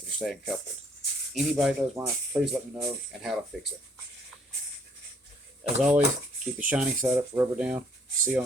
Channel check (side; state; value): both; normal; correlation 0.63